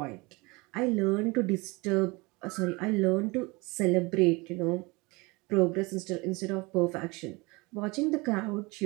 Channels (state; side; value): quieter; left; 25.3 dB